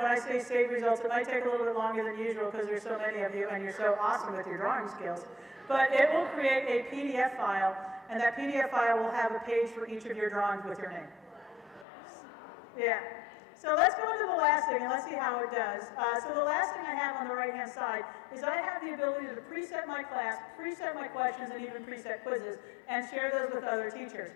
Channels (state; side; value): drops out; right; at 11.9 s